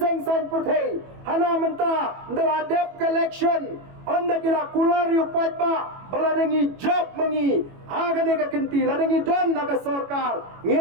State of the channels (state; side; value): late; left; 21 ms